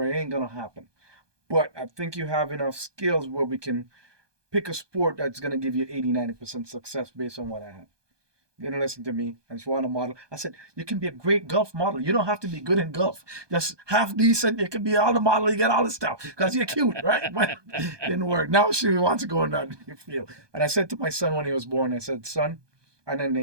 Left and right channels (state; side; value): late; left; 1.2 ms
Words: it ain't gonna happen. But I think you have enough skills where we can pick a sport that's gonna give you 80-90% success based on what I have. You didn't listen to me, and she wanted a model. I said, you can be a great golf model. You don't have to be good in golf. Just half decent. You can be all the model. You get all the stuff because you're cute, right? But it didn't work. Now she wants to go in that field. And I said to my son when he was born, I said, son, I didn't